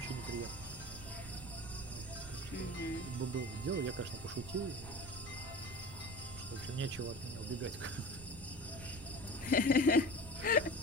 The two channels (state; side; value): noise; right; rumble, 14 dB below the sound